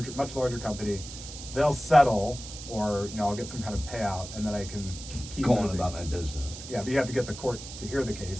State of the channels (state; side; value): noise; right; hiss, 12 dB below the sound